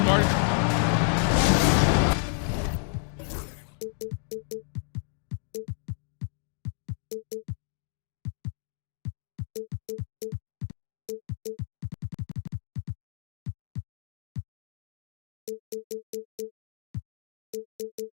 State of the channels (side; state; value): right; silent; 57 dB below the other